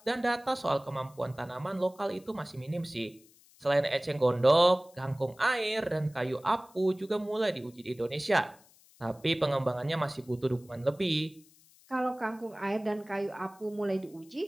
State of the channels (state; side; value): noise; left; hiss, 27 dB below the sound